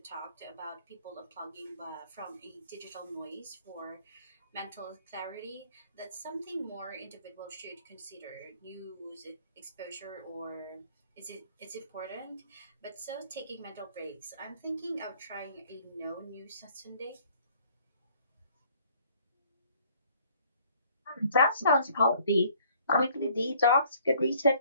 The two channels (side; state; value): both; inverted; correlation -0.59